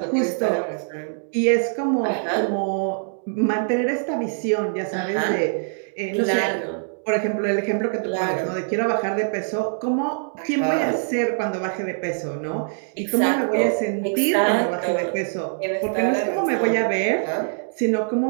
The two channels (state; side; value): silent; left; digital silence